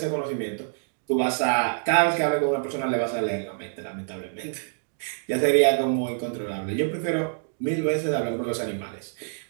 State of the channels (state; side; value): silent; left; digital silence